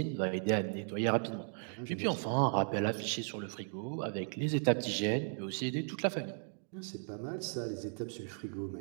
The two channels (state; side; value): silent; left; 54 dB below the other